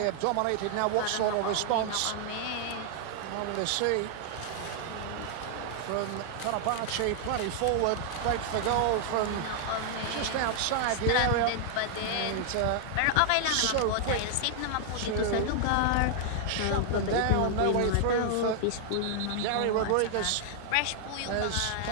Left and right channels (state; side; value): different; both; correlation 0.00